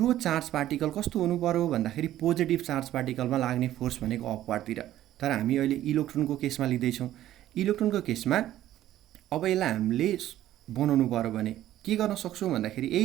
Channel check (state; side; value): quieter; left; 13.2 dB